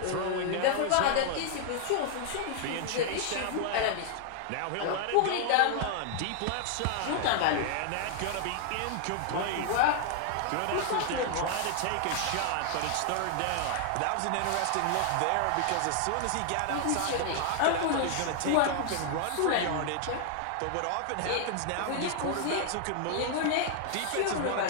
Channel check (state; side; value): different; both; correlation 0.00